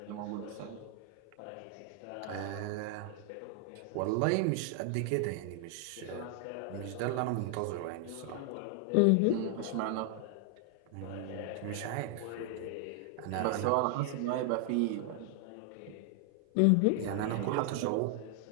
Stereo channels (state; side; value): different; both; correlation 0.00